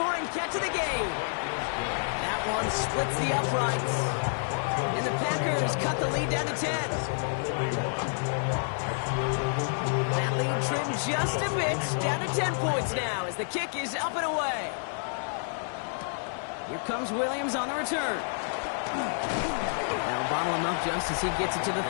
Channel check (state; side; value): silent; right; digital silence